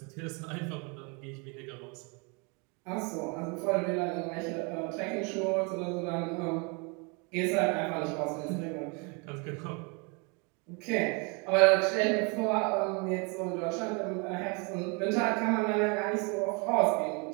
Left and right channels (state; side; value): quieter; left; 32.1 dB